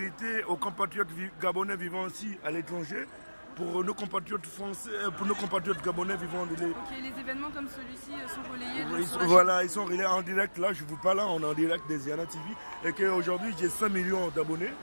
aux compatriotes gabonais vivant aussi à l'étranger pour nos compatriotes français, pour nos compatriotes gabonais vivant de Ok, les événements comme celui-ci sont relayés sur la voilà, ils sont relayés en direct. Là, je ne vous parle là, on est en direct des Ziana TV. Et qu'aujourd'hui, j'ai 5 millions d'abonnés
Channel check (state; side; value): inverted; both; correlation -1.00